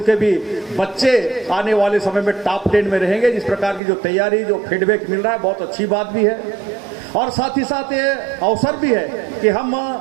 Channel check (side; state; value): left; drops out; at 3.8 s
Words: के भी बच्चे आने वाले समय में टॉप 10 में रहेंगे। जिस प्रकार की जो तैयारी जो फीडबैक मिल रहा है बहुत अच्छी बात भी है। और साथ ही साथ ये अवसर भी है कि हम